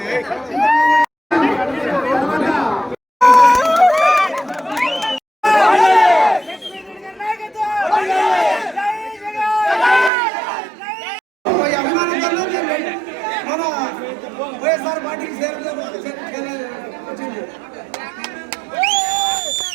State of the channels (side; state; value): left; drops out; at 10.1 s